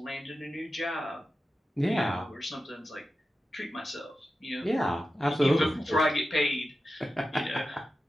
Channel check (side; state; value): both; normal; correlation 0.92